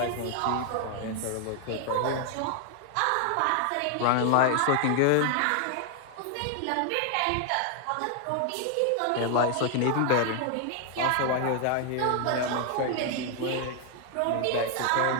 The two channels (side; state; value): both; different; correlation 0.00